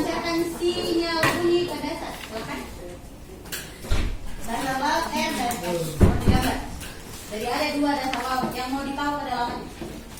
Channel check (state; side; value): identical; both; correlation 1.00